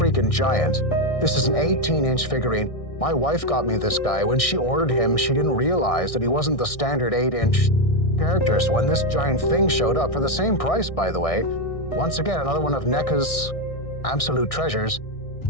giant. This is an 18-inch figurine. My wife got me this guy. When she ordered him, she didn't realize that he wasn't the standard 8-inch character. So when this giant thing showed up, for the same price, by the way, once again, another one of NECA's absolute treasures,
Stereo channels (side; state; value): right; late; 1.6 ms